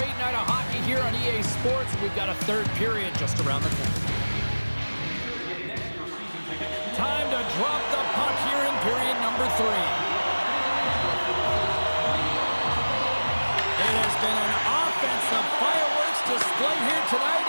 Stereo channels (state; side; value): inverted; both; correlation -1.00